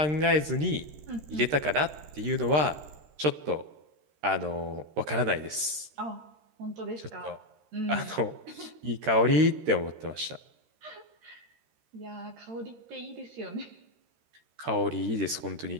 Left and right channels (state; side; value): late; left; 13 ms